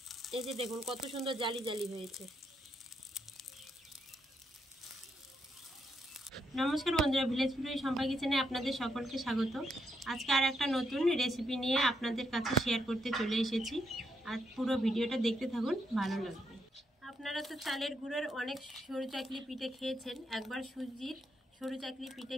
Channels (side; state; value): both; normal; correlation 0.79